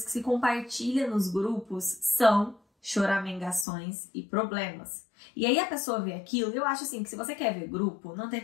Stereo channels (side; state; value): right; drops out; at 3.7 s